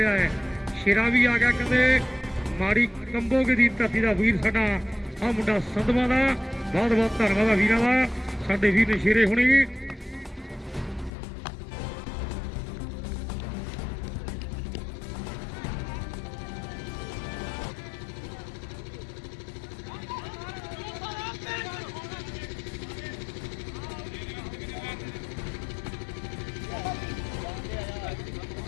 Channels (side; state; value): right; drops out; at 11.1 s